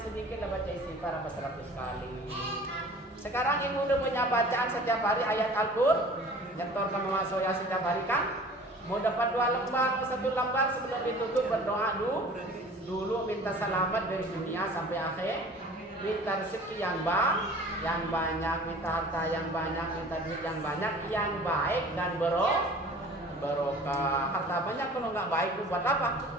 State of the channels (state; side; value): normal; both; correlation 0.45